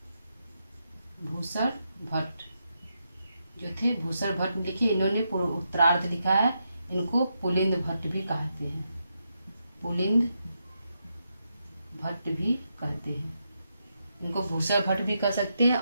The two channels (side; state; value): both; inverted; correlation -0.83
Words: भूसर भट्ट जो थे, भूसर भट्ट लिखे। इन्होंने उत्तरार्ध लिखा है। इनको पुलिंद भट्ट भी कहते हैं। पुलिंद भट्ट भी कहते हैं। इनको भूसर भट्ट भी कह सकते हैं